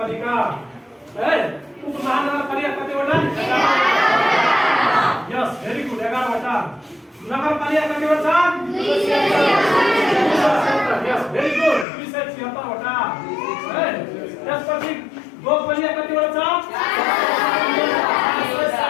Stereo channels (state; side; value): drops out; right; at 11.9 s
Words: है। उपमहानगरपालिका कतिवटा यस भेरी गुड 11वटा। नगरपालिका कतिवटा छन् यस भेरी गुड 276वटा है। त्यसपछि गाउँपालिका कतिवटा छ